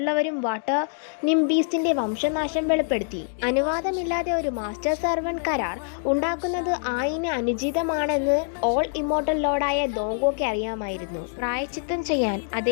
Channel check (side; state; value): right; silent; digital silence